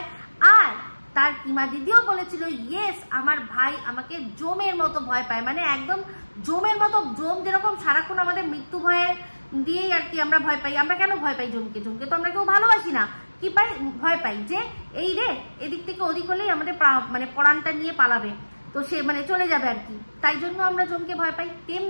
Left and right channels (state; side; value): inverted; both; correlation -1.00